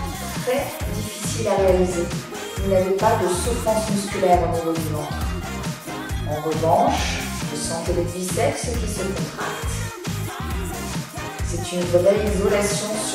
très difficile à réaliser. Vous n'avez pas de souffrance musculaire au niveau du ventre. En revanche, vous sentez les biceps qui se contractent. C'est une vraie isolation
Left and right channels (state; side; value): identical; both; correlation 1.00